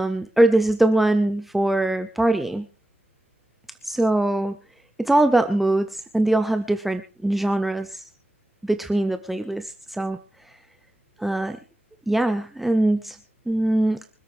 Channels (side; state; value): both; normal; correlation 0.93